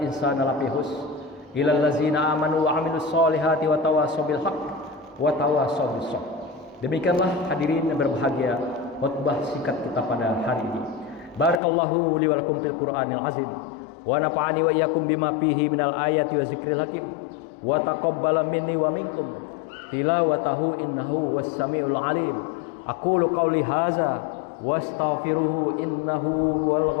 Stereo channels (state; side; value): drops out; right; at 11.6 s